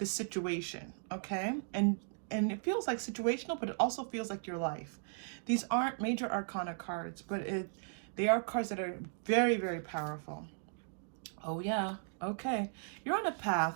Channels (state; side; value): silent; left; digital silence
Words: situation, okay? And it feels like situational, but it also feels like your life. These aren't major arcana cards, but they are cards that are very, very powerful. Oh yeah, okay. You're on a